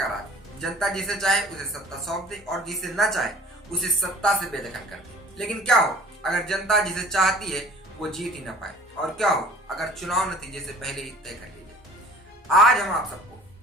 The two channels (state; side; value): normal; both; correlation 0.47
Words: राज। जनता जिसे चाहे उसे सत्ता सौंप दे और जिसे न चाहे उसे सत्ता से बेदखल कर दे। लेकिन क्या हो अगर जनता जिसे चाहती है वो जीत ही न पाए, और क्या हो अगर चुनाव नतीजे से पहले ही तय कर ली जाए। आज हम आप सबको